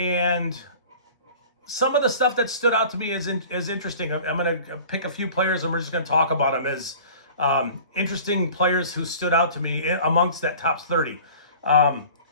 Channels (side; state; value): both; inverted; correlation -0.43